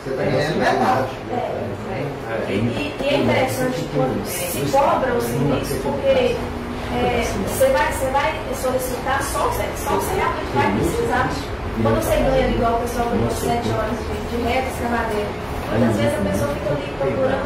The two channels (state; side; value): identical; both; correlation 1.00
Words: Você está ganhando metade. E é interessante quando se cobra o serviço, porque você vai solicitar só o que você realmente vai precisar. Quando você ganha igual o pessoal ganhou 7 horas de reta, escavadeira, muitas vezes a pessoa fica ali